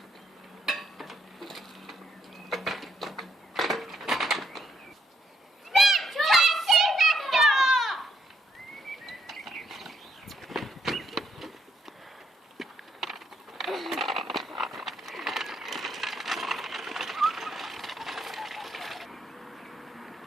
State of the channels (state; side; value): normal; both; correlation 0.74